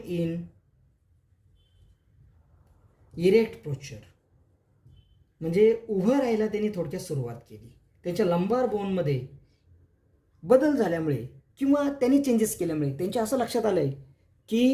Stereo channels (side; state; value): both; identical; correlation 1.00